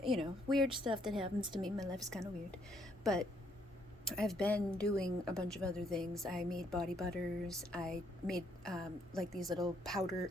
weird stuff that happens to me. My life is kind of weird. But I've been doing a bunch of other things. I made body butters. I made like these little powder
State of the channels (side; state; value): both; normal; correlation 0.70